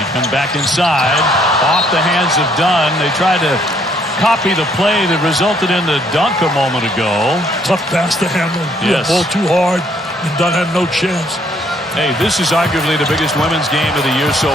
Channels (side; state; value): both; normal; correlation 0.66